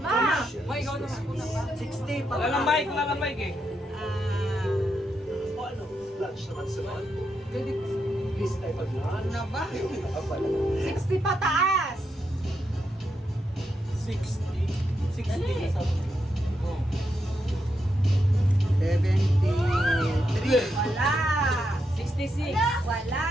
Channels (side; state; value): both; normal; correlation 0.83